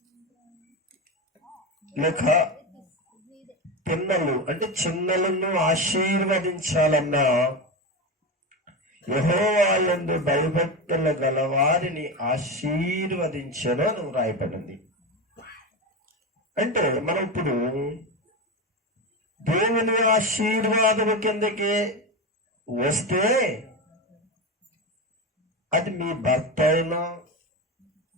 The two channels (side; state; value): both; normal; correlation 0.18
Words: లేక పిన్నలు అంటే చిన్నలను ఆశీర్వదించాలన్నా యెహోవా యందు భయభక్తులు గల వారిని ఆశీర్వదించను అని రాయబడింది. అంటే మనం ఇప్పుడు దేవుని ఆశీర్వాదం కిందకి వస్తే అది మీ భర్త అయినా,